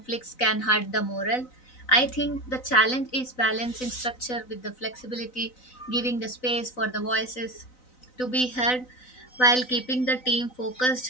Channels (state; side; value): late; right; 4.0 ms